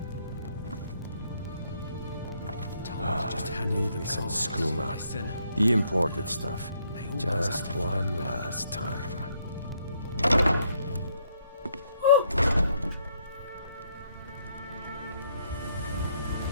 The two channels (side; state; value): both; inverted; correlation -0.72